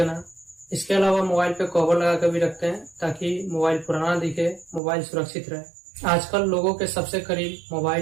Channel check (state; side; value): drops out; left; at 4.8 s